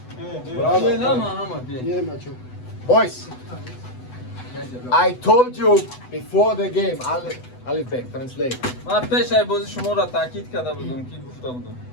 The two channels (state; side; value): late; right; 8.0 ms